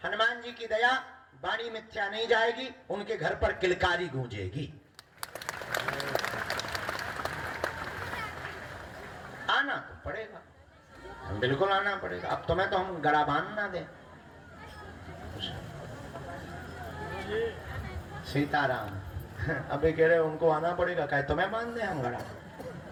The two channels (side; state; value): both; identical; correlation 1.00